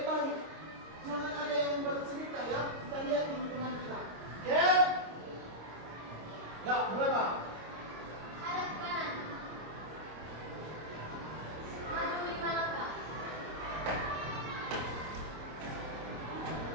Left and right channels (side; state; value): left; late; 26 ms